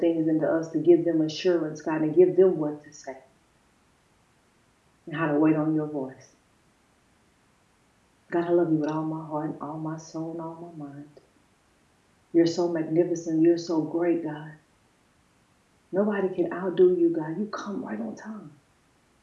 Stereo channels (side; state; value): both; identical; correlation 1.00